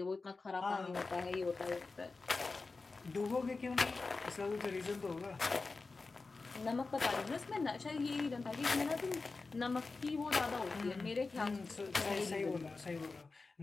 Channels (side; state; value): right; quieter; 3.9 dB